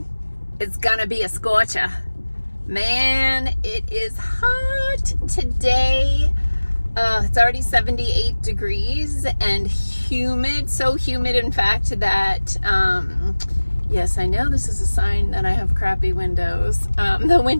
it's gonna be a scorcher. Man, it is hot today. It's already 78 degrees and humid, so humid in fact that, yes, I know this is a sign that I have crappy windows. The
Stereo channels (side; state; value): both; inverted; correlation -1.00